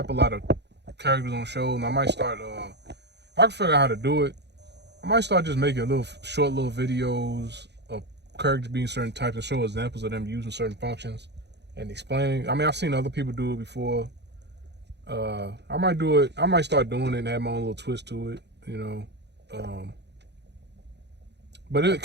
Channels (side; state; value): left; late; 0.50 ms